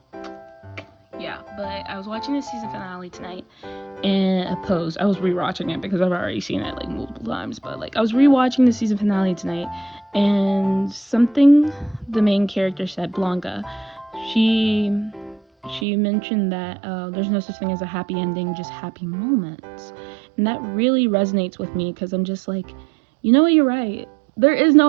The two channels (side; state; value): left; drops out; at 15.9 s